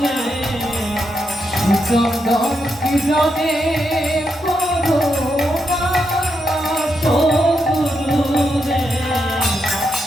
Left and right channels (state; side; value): normal; both; correlation 0.82